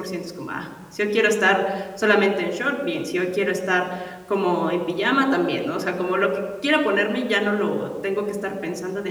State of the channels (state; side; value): identical; both; correlation 1.00